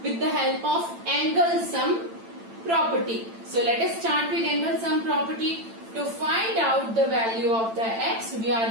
with the help of angle sum property. So let us start with angle sum property. To find out the value of the x, we are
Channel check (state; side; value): late; left; 8.9 ms